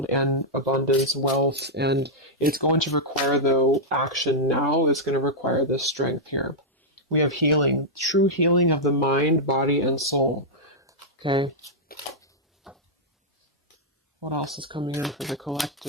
and abundance, wealth. And it's going to require, though, action now. It's going to require this strength here. We have healing, true healing of the mind, body, and soul. Okay. What else is coming in for the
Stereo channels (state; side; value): normal; both; correlation -0.07